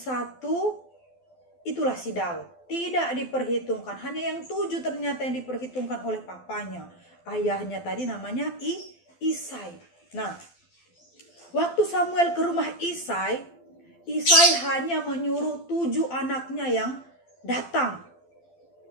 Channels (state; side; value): late; right; 12 ms